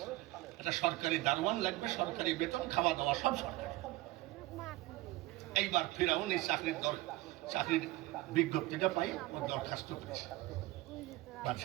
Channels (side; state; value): left; quieter; 18.8 dB